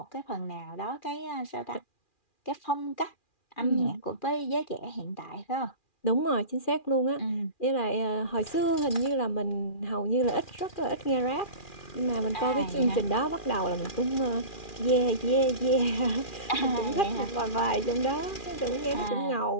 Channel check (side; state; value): right; late; 2.4 ms